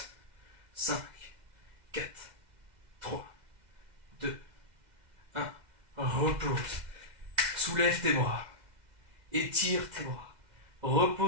5, 4, 3, 2, 1. Repose. Soulève tes bras. Étire tes bras.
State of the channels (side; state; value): left; late; 2.0 ms